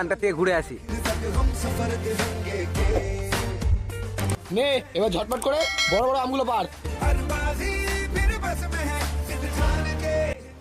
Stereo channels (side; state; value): both; identical; correlation 1.00